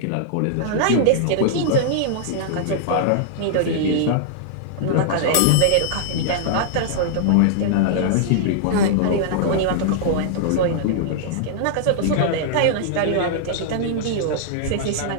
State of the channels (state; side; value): different; both; correlation -0.01